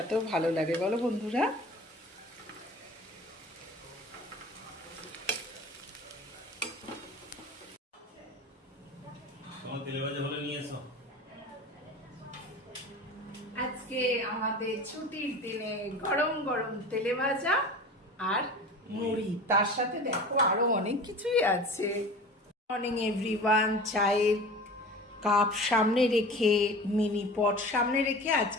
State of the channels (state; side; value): normal; both; correlation 0.37